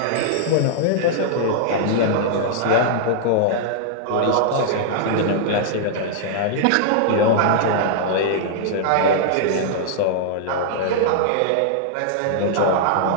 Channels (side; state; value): both; different; correlation -0.01